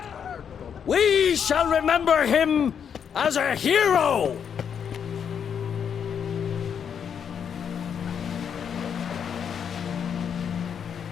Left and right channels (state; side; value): quieter; right; 7.7 dB